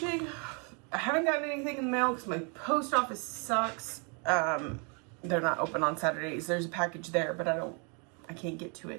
I haven't gotten anything in the mail because my post office sucks. They're not open on Saturdays. There's a package there, but I can't get to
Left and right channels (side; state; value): left; quieter; 36.0 dB